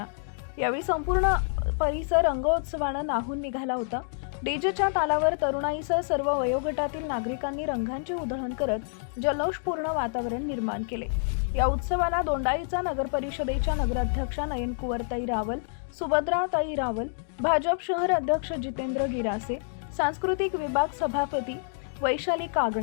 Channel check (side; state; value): right; silent; digital silence